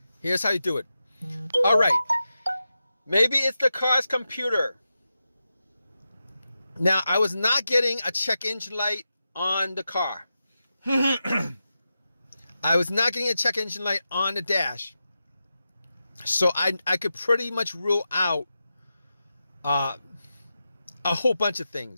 Here's how you do it. All right, maybe it's the car's computer. Now, I was not getting a check engine light on the car. I was not getting a check engine light on the dash. So I could pretty much rule out a whole bunch of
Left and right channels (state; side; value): inverted; both; correlation -0.91